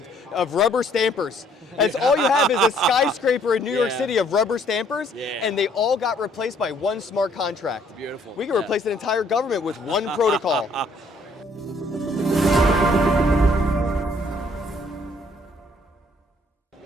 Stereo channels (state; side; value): normal; both; correlation 0.64